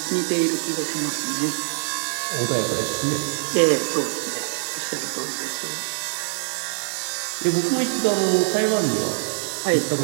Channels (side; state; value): left; silent; 63 dB below the other